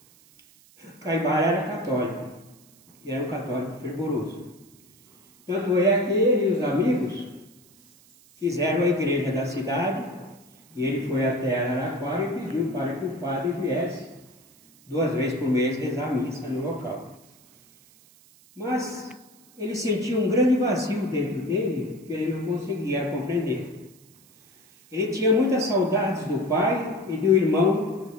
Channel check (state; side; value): noise; right; hiss, 28 dB below the sound